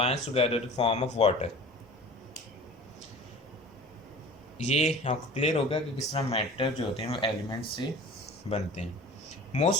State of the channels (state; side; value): normal; both; correlation 0.41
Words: together to form of water. ये आपको क्लियर होगा कि किस तरह मैटर जो होते हैं वो एलिमेंट से बनते हैं.